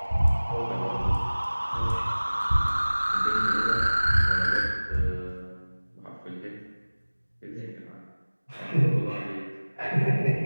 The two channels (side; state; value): both; inverted; correlation -1.00